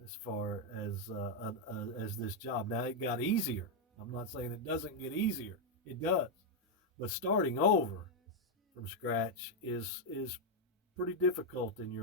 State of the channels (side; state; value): both; normal; correlation 0.00